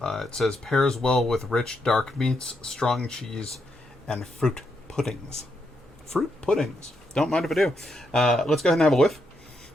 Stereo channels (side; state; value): both; normal; correlation 0.80